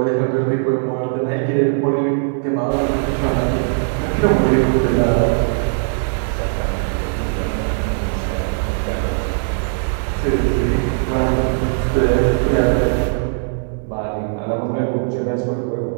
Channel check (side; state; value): left; silent; digital silence